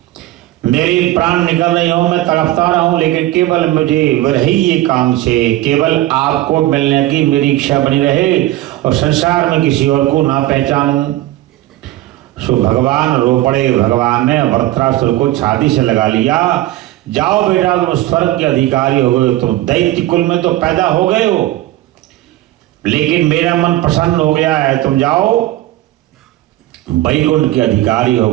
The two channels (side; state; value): left; quieter; 15.8 dB